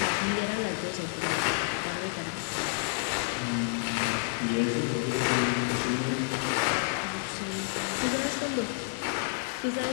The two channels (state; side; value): silent; right; 58 dB below the other